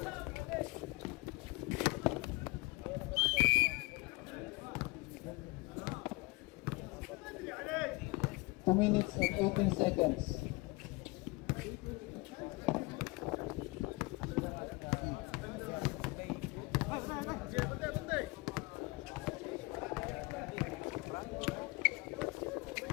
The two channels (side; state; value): right; quieter; 24.5 dB